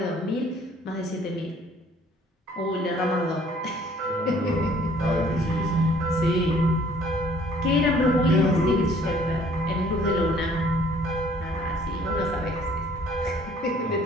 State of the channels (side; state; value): both; normal; correlation 0.58